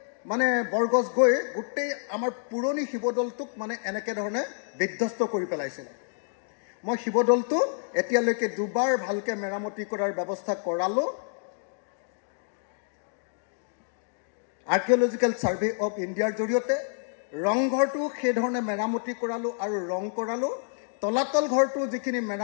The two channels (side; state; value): right; silent; digital silence